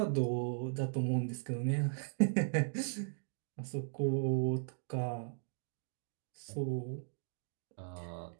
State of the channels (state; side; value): silent; left; digital silence